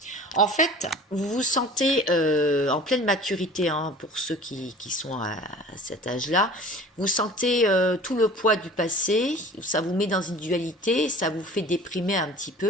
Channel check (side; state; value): both; normal; correlation 0.43